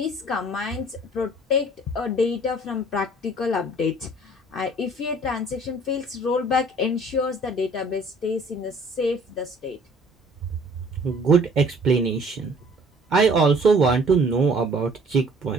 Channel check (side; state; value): both; normal; correlation 0.54